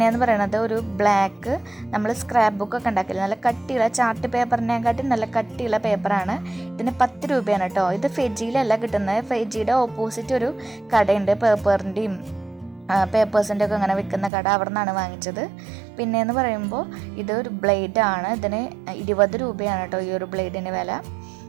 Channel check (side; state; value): left; drops out; at 14.3 s